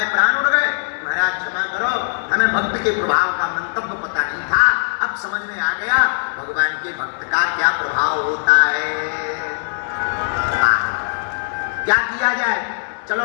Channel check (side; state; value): right; silent; 58 dB below the other